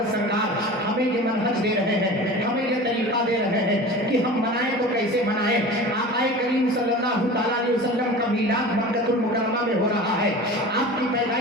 سرکار ہمیں یہ منہج دے رہے ہیں، ہمیں یہ طریقہ دے رہے ہیں کہ ہم منائیں تو کیسے منائیں. آقا کریم صلی اللہ تعالیٰ علیہ وسلم کا میلاد مکہ المکرمہ میں ہو رہا ہے، آپ کی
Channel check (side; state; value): both; normal; correlation 0.35